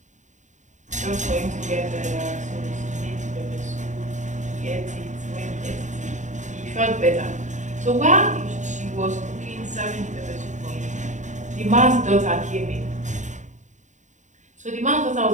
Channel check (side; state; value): left; late; 0.35 ms